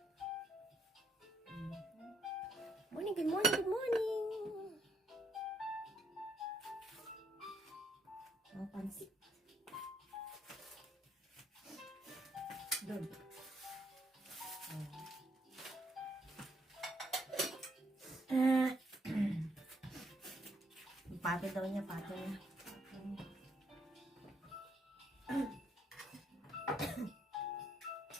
Morning, good morning, good morning. Ang pansit. Doon. Pate daw niya, pate niya.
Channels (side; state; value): both; normal; correlation 0.72